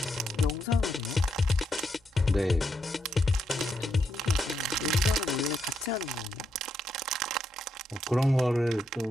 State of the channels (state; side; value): normal; both; correlation 0.80